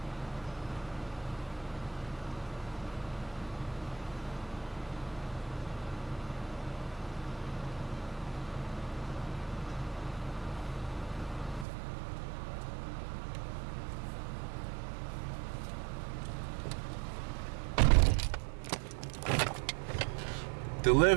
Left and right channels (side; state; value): left; drops out; at 11.7 s